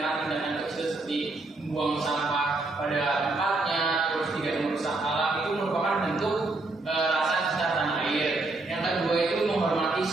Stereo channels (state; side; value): quieter; left; 3.2 dB